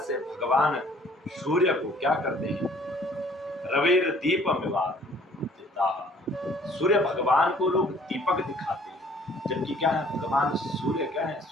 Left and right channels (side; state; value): both; normal; correlation 0.56